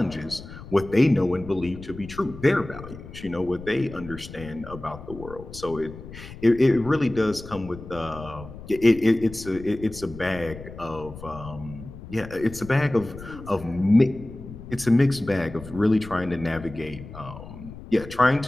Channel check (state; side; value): noise; left; rumble, 14 dB below the sound